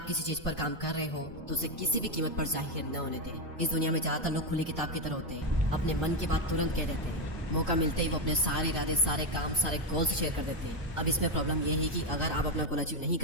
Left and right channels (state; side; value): normal; both; correlation 0.07